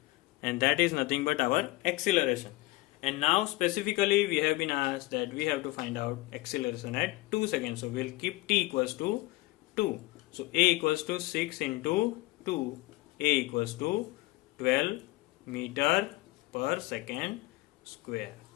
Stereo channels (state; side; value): quieter; right; 19.7 dB